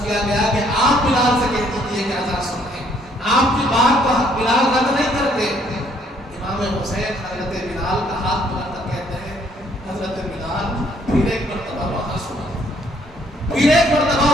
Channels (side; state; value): both; normal; correlation 0.66